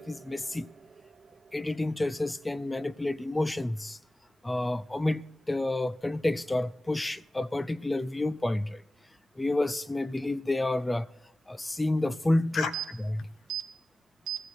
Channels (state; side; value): normal; both; correlation 0.96